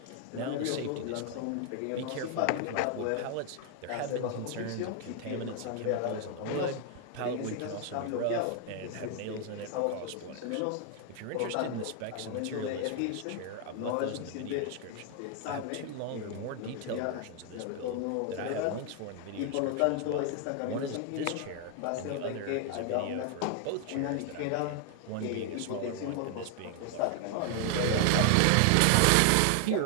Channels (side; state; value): both; different; correlation 0.00